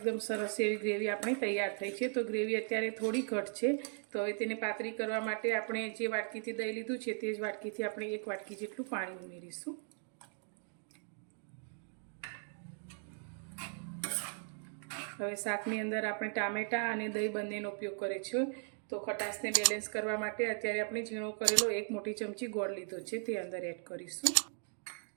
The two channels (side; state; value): left; silent; 53 dB below the other